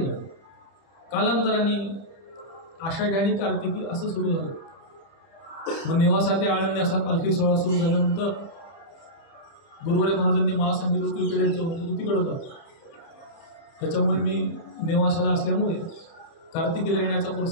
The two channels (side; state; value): right; late; 30 ms